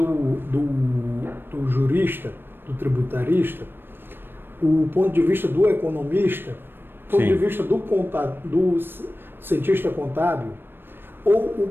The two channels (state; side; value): late; left; 0.099 ms